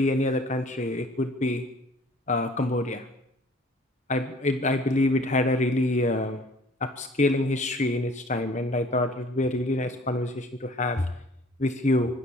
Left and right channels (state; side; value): normal; both; correlation 0.52